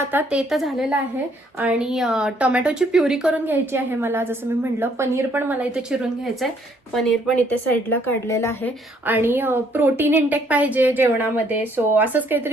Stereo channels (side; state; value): both; normal; correlation 0.66